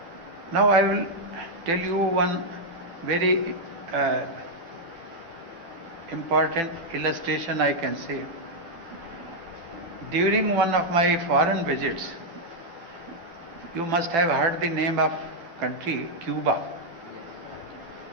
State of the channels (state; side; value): late; left; 12 ms